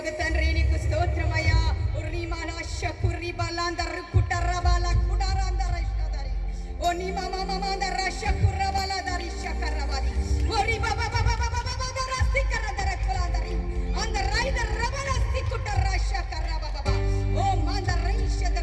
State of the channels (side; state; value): both; identical; correlation 1.00